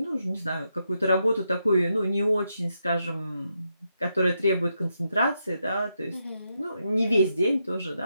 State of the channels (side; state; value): both; inverted; correlation -0.82